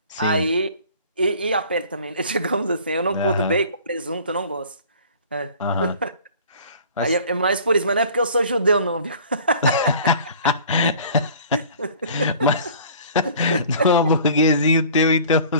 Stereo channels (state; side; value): inverted; both; correlation -0.48